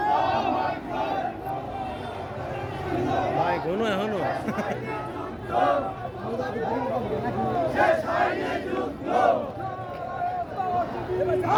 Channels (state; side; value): identical; both; correlation 1.00